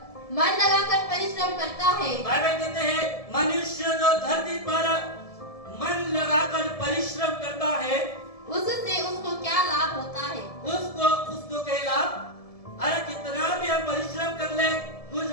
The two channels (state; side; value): late; right; 1.7 ms